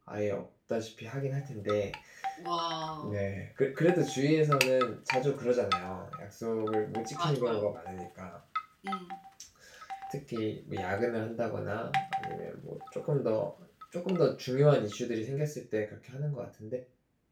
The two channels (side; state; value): both; identical; correlation 1.00